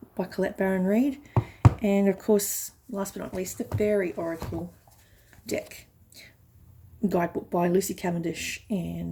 by Colette Baron Reid, and of course, last but not least, the Fairy Oracle deck guidebook by Lucy Cavendish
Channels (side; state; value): both; identical; correlation 1.00